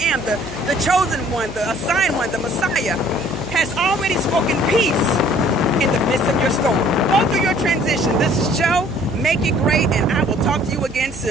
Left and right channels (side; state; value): right; noise; hum, 15 dB below the sound